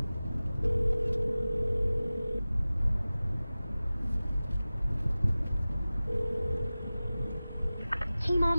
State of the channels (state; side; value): inverted; both; correlation -0.97